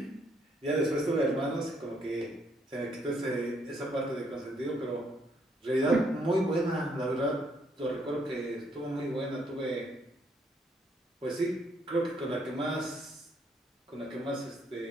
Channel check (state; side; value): normal; both; correlation 0.70